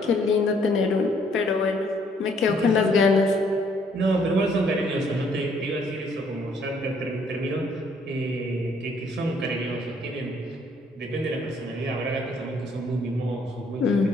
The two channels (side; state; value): both; normal; correlation 0.65